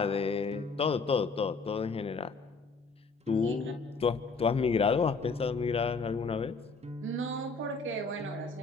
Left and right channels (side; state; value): right; quieter; 4.3 dB